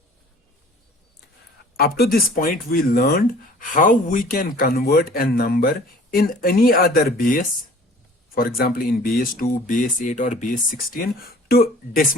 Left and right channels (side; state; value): both; normal; correlation 0.49